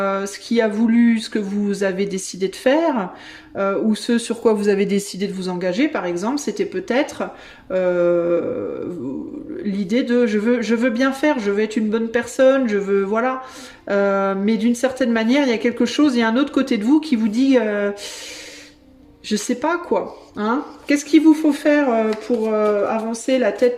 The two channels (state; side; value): identical; both; correlation 1.00